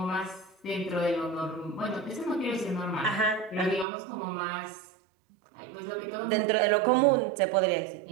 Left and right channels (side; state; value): left; drops out; at 3.9 s